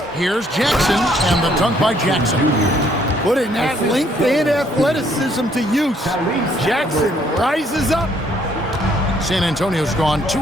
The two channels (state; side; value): normal; both; correlation 0.66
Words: Here's Jackson, and the dunk by Jackson. Putting that length and athleticism to use. Jackson rises up. San Antonio's gone 2